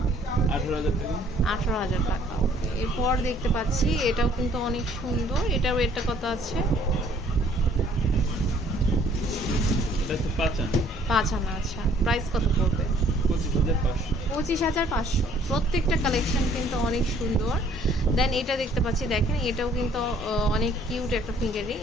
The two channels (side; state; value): both; normal; correlation 0.60